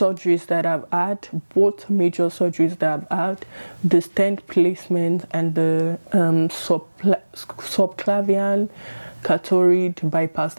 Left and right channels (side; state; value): both; inverted; correlation -1.00